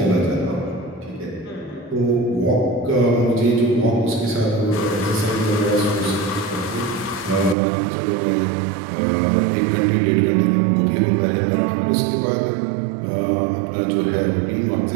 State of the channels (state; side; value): drops out; left; at 7.6 s